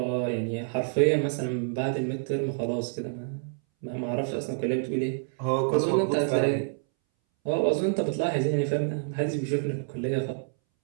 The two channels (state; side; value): silent; left; 60 dB below the other